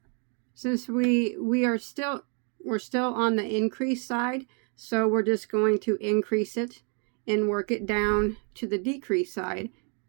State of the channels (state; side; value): quieter; left; 38.6 dB